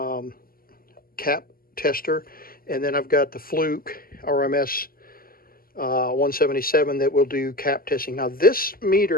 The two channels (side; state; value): right; late; 0.42 ms